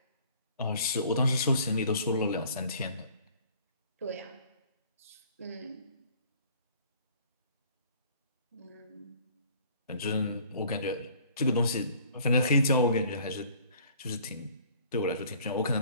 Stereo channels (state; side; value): inverted; both; correlation -0.54